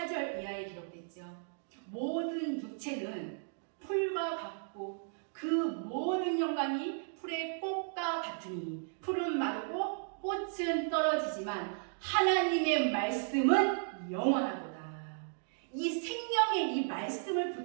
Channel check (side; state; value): left; silent; digital silence